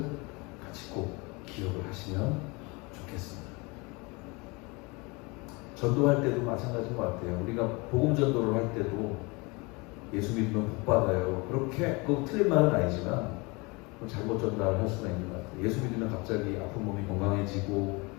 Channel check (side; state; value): right; quieter; 27.1 dB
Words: 같이 꼭 기억을 하시면 좋겠습니다. 전도할 때도 마찬가지인 것 같아요. 우리가 복음 전도를 할 때도 예수 믿으면 복 받아요. 그렇게 꼭 틀린 말은 아니지만 잘못 전달을 할 수가 있는 것 같아요. 예수 믿으면 갑자기 아픈 몸이 건강해지고